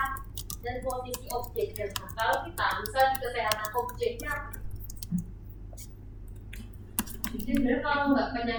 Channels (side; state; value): both; identical; correlation 1.00